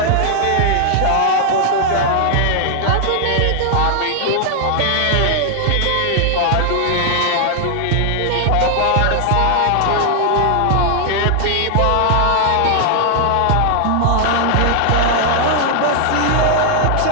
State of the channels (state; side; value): different; both; correlation 0.00